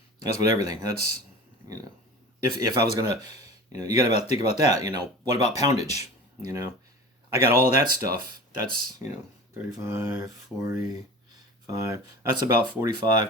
that's with everything. That's, you know, if I was gonna, you know, you got to think about that. You know, what about poundage? You know, I got all that stuff. That's, you know, 35, 45, that's about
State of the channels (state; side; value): normal; both; correlation 0.36